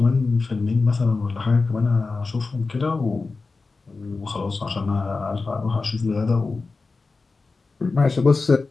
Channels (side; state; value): right; quieter; 4.0 dB